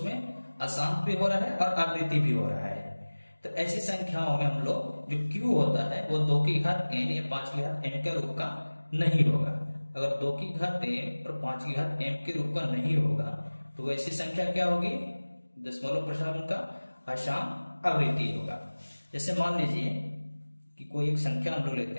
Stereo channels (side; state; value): both; inverted; correlation -1.00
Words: अशांत भी हो रहा है और आवृत्ति भी हो रहा है। तो ऐसी संख्याओं में हम लोग जो q होता है वो 2 की घात n या 5 की घात m के रूप का नहीं होगा। अगर 2 की घात m और 5 की घात m के रूप का नहीं होगा तो ऐसी संख्या क्या होगी, दशमलव प्रसार का अशांत आवृत्ति होगा। जैसे मान लीजिए कि कोई एक संख्या हम लोग